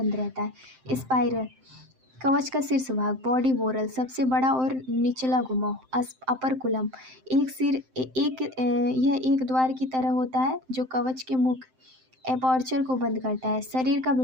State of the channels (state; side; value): late; left; 7.7 ms